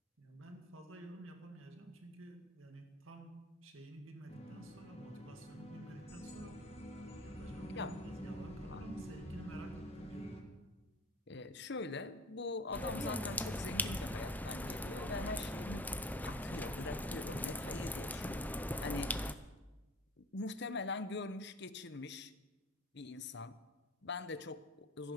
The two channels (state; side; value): normal; both; correlation 0.44